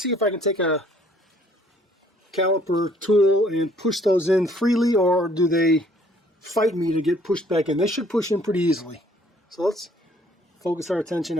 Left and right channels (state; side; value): normal; both; correlation 0.61